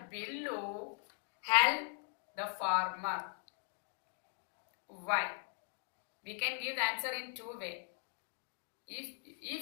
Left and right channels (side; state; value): right; silent; 51 dB below the other